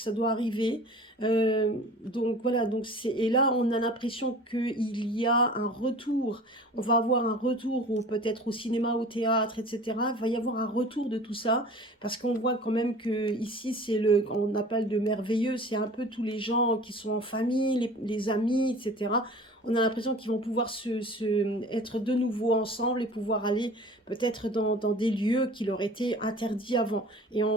doit arriver. Donc voilà, et là, on a l'impression qu'il y a un retour. On va avoir un retour, peut-être au cinéma, au théâtre, etc. Il va y avoir un retour de tout ça, parce qu'on voit quand même que ici, on appelle de merveilleux, c'est un peu tous les gens qui sont en famille, les amis, etc. on a l'impression qu'ils vont pouvoir être de nouveau ensemble et pouvoir aller peut-être dans des lieux qui leur étaient interdits avant. Et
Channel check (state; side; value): normal; both; correlation 0.43